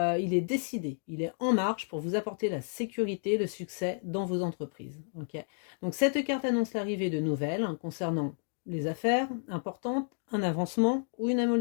est décidé, il est en marche pour vous apporter la sécurité, le succès dans vos entreprises. Okay, donc cette carte annonce l'arrivée de nouvelles concernant les affaires importantes, un avancement ou une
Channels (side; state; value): right; silent; digital silence